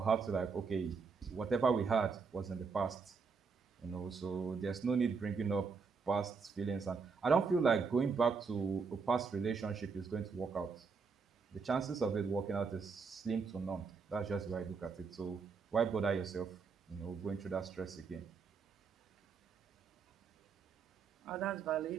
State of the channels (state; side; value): quieter; left; 5.2 dB